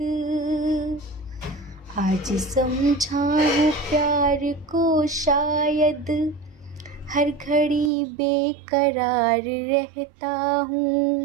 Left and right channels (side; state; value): left; drops out; at 7.9 s